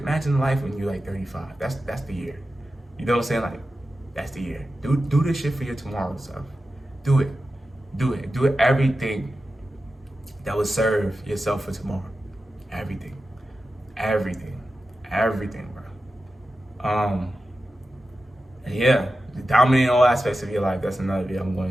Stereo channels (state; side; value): normal; both; correlation 0.92